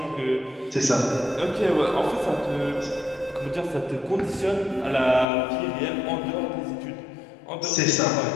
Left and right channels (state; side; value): drops out; right; at 5.2 s